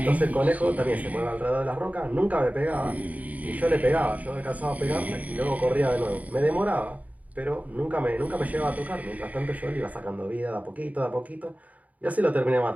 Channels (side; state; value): left; late; 0.072 ms